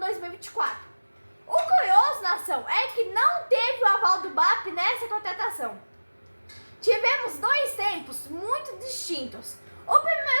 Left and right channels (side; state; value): both; inverted; correlation -1.00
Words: O curioso, nação, é que não teve o aval do BAP nessa contratação. Tivemos dois tempos muito distintos. O